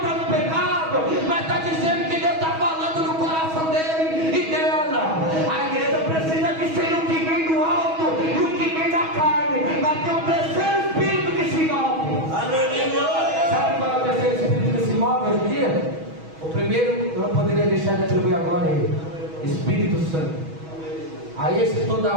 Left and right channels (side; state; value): left; late; 6.2 ms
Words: no pecado, mas está dizendo que Deus está falando no coração dele e dela. A igreja precisa discernir o que vem do alto e o que vem da carne, mas tem um terceiro espírito que se move. Sabe qual é o terceiro espírito que se move hoje em dia? O primeiro eu não poderia deixar de atribuir a glória a ele: Espírito Santo. A esse toda